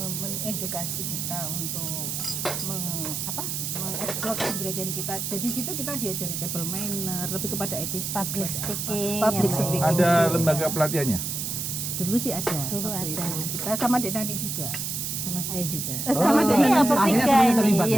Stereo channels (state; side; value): noise; right; hiss, 3 dB below the sound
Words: mengedukasi kita untuk mengeksplor kepribadian kita. Jadi situ kita diajari table manner, lebih kepada attitude, Public speaking. Public ya, Bu. speaking. Ada lembaga pelatihannya? Dulu sih ada. Dulu waktu ada. itu. Kita sama Dek Nani juga. Sama saya juga. Sama Dek Iya, Nani juga. bertiga Akhirnya semuanya ini. terlibat